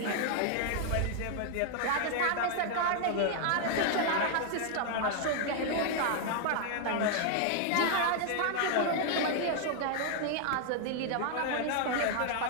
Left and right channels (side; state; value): both; different; correlation 0.00